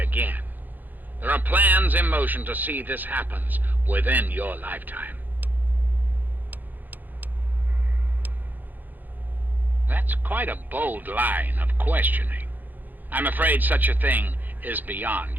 There are plans in motion to see this happen within your lifetime. That's quite a bold line of questioning. I'm afraid such a thing is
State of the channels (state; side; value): late; left; 0.086 ms